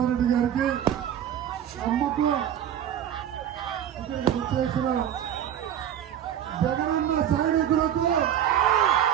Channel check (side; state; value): left; quieter; 10.1 dB